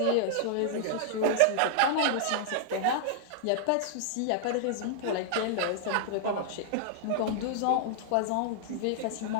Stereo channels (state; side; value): different; both; correlation -0.01